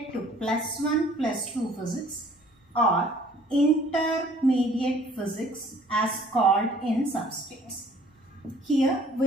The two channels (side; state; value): both; normal; correlation 0.56